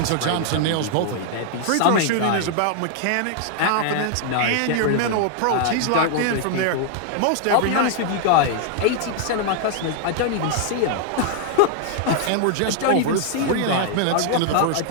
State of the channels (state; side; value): different; both; correlation 0.00